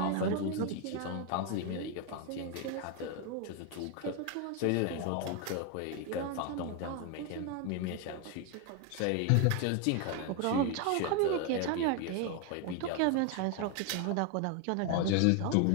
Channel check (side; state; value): both; different; correlation 0.01